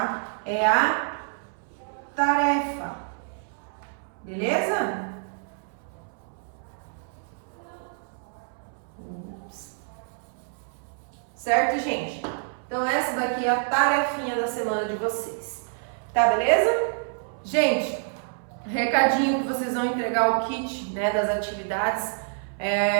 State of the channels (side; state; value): left; silent; 60 dB below the other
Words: É a tarefa, beleza? Certo, gente? Então, essa daqui é a tarefinha da semana de vocês. Tá, beleza? Gente, recadinho que vocês vão entregar o kit, né, das atividades.